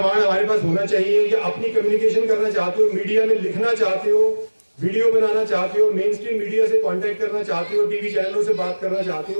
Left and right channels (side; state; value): both; inverted; correlation -1.00